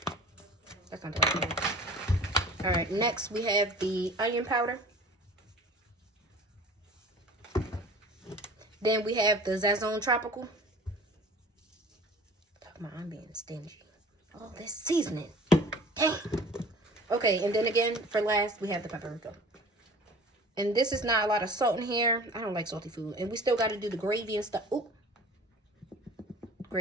That's not the right one. All right, next we have the onion powder. Then we have the Sazon Tropical. Talking about I'm being stingy. All this seasoning. Dang. Okay, and then again, for last, we have the paprika. And this is not a lot of salt in here. I don't like salty food. And we still got to do the gravy and stuff. Ooh.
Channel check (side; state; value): both; normal; correlation 0.44